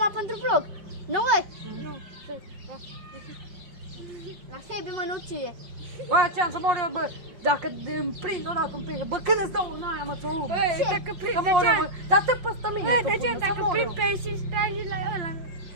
pentru vlog. Nu, mă? Nu. La Sebi mă nu ție. Bă, ce-am să mor eu, bă. Dacă îmi prind o dată, îmi prind. Bă, când îți dau în aia, mă, ți-o lup. Băi, dacă prind, Că mor eu, bă. Dar te păstă mine. Băi, tot de ce până, să dacă mor prind eu. pești și stai la ăla?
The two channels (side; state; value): left; late; 5.7 ms